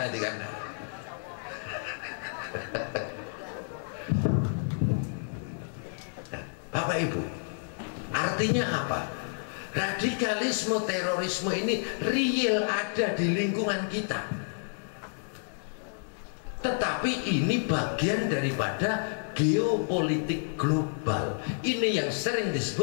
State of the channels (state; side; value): silent; right; digital silence